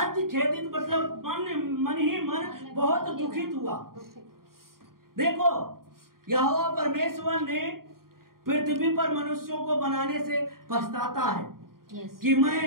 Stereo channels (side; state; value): left; late; 0.92 ms